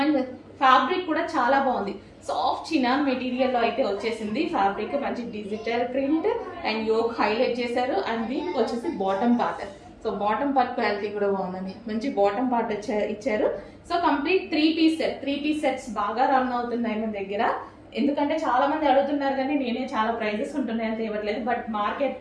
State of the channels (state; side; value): identical; both; correlation 1.00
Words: ఫ్యాబ్రిక్ కూడా చాలా బాగుంది. సాఫ్ట్ చినాన్ మెటీరియల్ లో అయితే వచ్చేసింది. ఫ్యాబ్రిక్ మంచి digital print and yoke highlight చేశారు. అండ్ దీనికి వచ్చేసి bottom part. So bottom part quality కూడా బాగుందండి, మంచి బాటమ్ పార్ట్ ఇచ్చారు. So complete 3 piece set. 3 piece sets బాగా రన్ అవుతున్నాయి మన దగ్గర. ఎందుకంటే చాలా మంది అడుగుతున్నారు కానీ నేనే చాలా ప్రైజెస్ ఉంటున్నాయని తేవట్లేదు. బట్